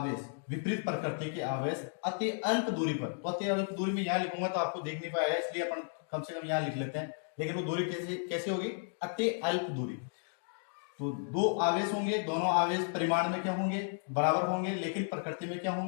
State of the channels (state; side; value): silent; right; digital silence